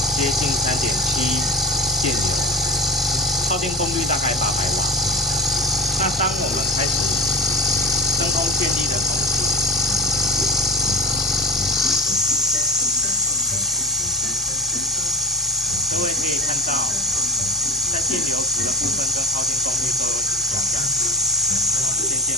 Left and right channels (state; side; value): normal; both; correlation 0.25